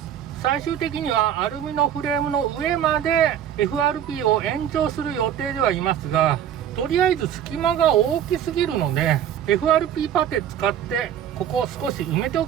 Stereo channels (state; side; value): quieter; left; 9.8 dB